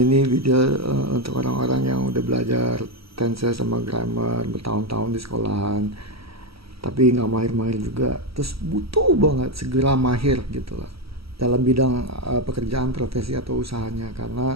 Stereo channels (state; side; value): late; left; 0.75 ms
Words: video untuk orang-orang yang udah belajar tenses sama grammar bertahun-tahun di sekolahan, tapi nggak mahir-mahir juga. Terus butuh banget segera mahir gitu lah dalam bidang pekerjaan, profesi atau usahanya,